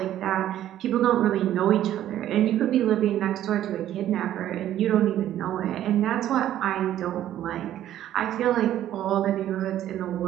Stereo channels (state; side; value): quieter; left; 12.1 dB